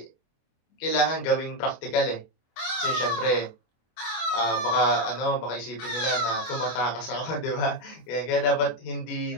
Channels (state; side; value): late; right; 24 ms